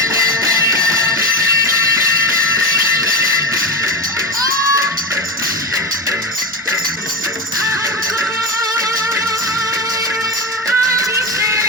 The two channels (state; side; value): normal; both; correlation 0.20